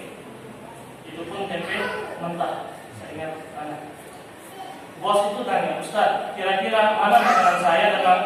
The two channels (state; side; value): identical; both; correlation 1.00